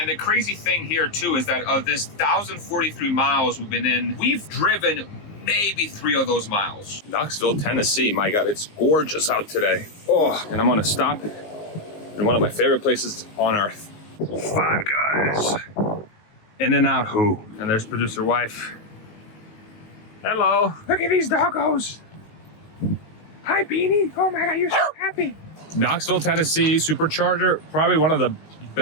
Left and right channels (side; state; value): right; late; 19 ms